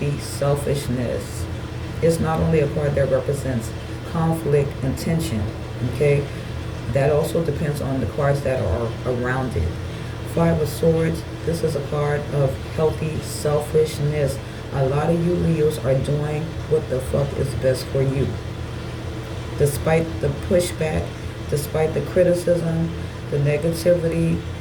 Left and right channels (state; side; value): identical; both; correlation 1.00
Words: selfishness. It's not only a card that represents conflict and tension, okay? That also depends on the cards that are around it. Five of Swords, this is a card of healthy selfishness. A lot of you Leos are doing what the fuck is best for you. Despite the pushback, despite the criticism, the negativity,